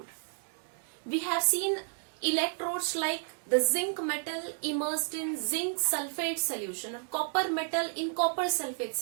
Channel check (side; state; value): left; silent; 57 dB below the other